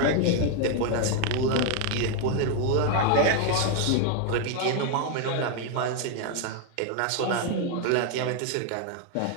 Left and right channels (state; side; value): different; both; correlation 0.01